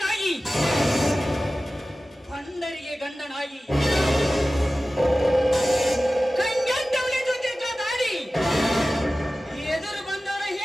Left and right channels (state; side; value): normal; both; correlation 0.96